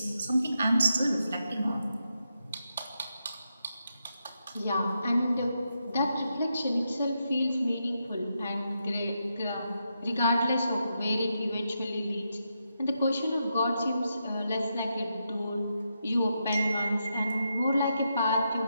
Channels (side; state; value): both; inverted; correlation -0.84